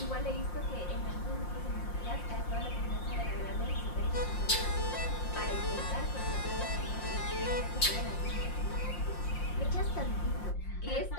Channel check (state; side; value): late; right; 5.7 ms